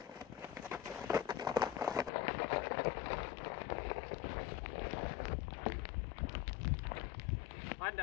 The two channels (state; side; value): drops out; right; at 2.1 s